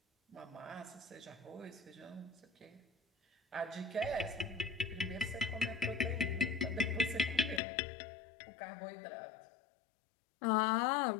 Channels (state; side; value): drops out; right; at 7.6 s